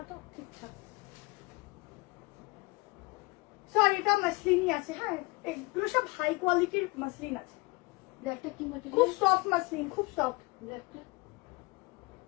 তো ঠিকঠাক, সরি এটা মসলিনই আছে, হ্যাঁ এগুলো সব হাই কোয়ালিটির মসলিন আছে। ব্ল্যাকটা কি ম্যাটেরিয়াল? খুব সফট মসলিন, খুব সফট। ব্ল্যাকটা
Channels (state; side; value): quieter; right; 24.2 dB